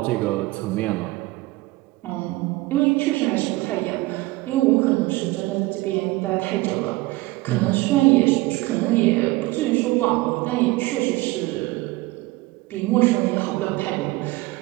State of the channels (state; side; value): quieter; left; 20.5 dB